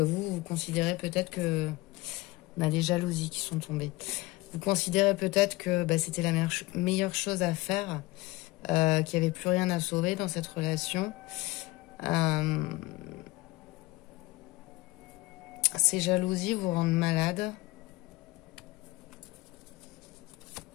vous considérez peut-être que... On a des jalousies qui sont tombées. Vous considérez peut-être que c'était la meilleure chose à faire, qu'il n'y avait plus rien à sauver dans cette relation. Ces jalousies vous rendent malade.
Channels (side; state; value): right; quieter; 20.9 dB